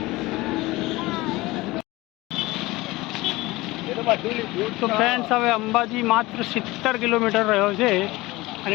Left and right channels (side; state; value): right; quieter; 20.3 dB